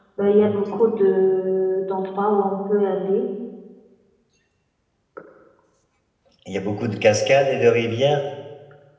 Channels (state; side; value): identical; both; correlation 1.00